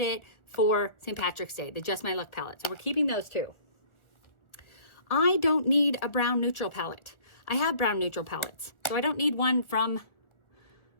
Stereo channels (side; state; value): right; late; 1.4 ms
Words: for St. Patrick's Day, the Just My Look palette. So we're keeping those two. I don't need a brown neutral palette. I have brown neutral palettes, so I don't need one from